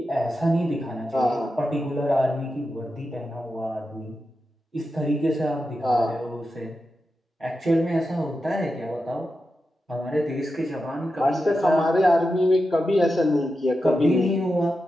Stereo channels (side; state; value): both; normal; correlation 0.90